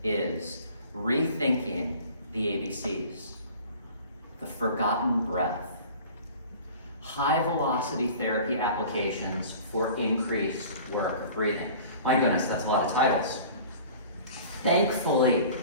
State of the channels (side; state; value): both; inverted; correlation -0.44